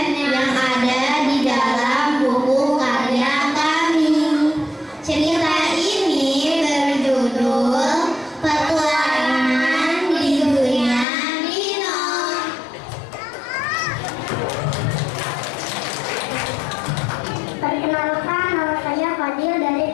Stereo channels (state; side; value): drops out; right; at 11.1 s